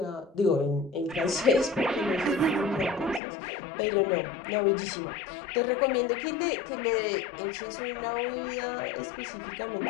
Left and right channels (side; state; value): right; drops out; at 3.2 s